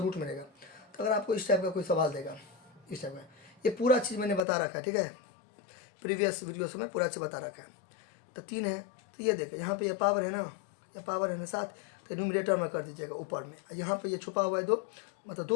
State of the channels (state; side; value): drops out; right; at 4.4 s